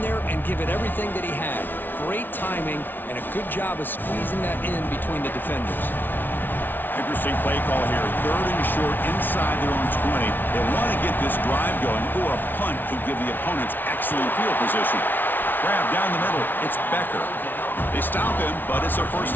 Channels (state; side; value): late; right; 0.092 ms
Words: there and give it everything that he had. Great timing and a good job of squeezing that in between the defenders. Interesting play call here. 3rd and short inside their own 20. They want to get this drive going, or a punt could give the opponents excellent field position. Grab down the middle. It's Becker. They stop him, but it's a first